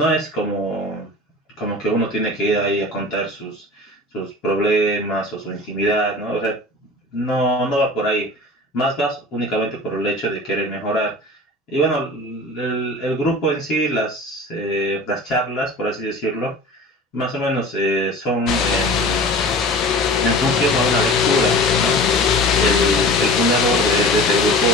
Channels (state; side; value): normal; both; correlation 0.38